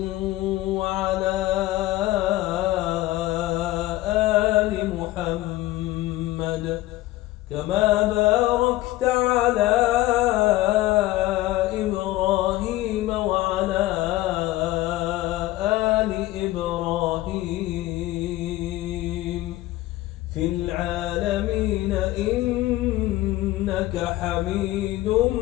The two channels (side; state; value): right; quieter; 17.0 dB